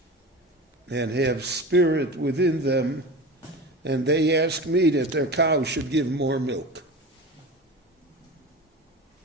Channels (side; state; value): both; normal; correlation 0.31